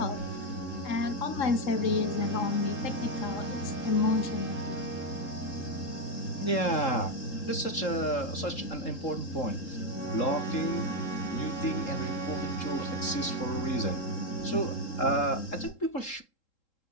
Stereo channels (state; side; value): late; right; 3.7 ms